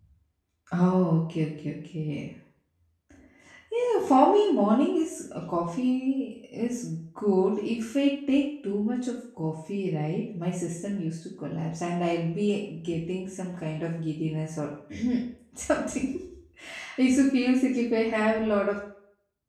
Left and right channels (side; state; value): both; identical; correlation 1.00